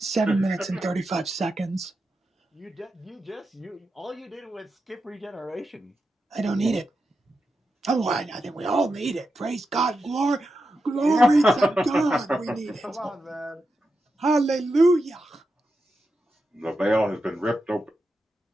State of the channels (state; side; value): normal; both; correlation 0.88